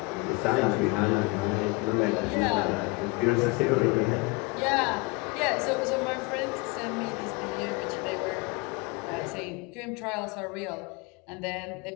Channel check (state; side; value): quieter; right; 26.6 dB